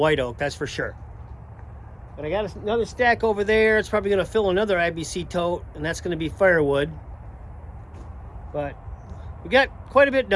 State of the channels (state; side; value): identical; both; correlation 1.00